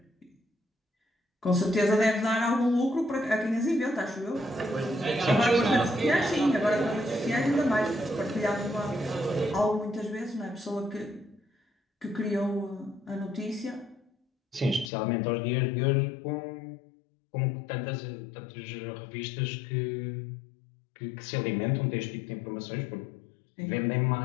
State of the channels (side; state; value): right; drops out; at 14.9 s